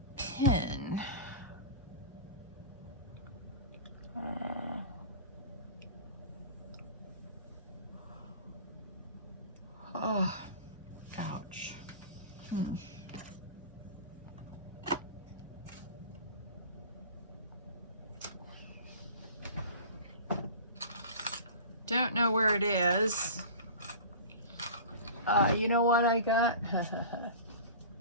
pen? Oh, ouch. Don't know where it is. You know what I got?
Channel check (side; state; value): both; inverted; correlation -0.37